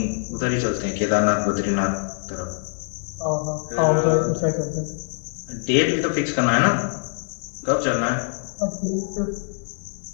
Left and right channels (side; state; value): right; silent; 63 dB below the other